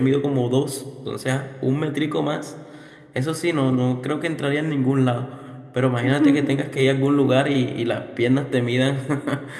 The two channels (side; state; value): both; identical; correlation 1.00